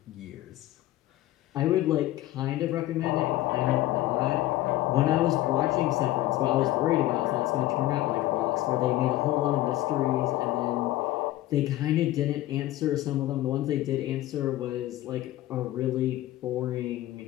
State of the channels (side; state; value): right; quieter; 15.5 dB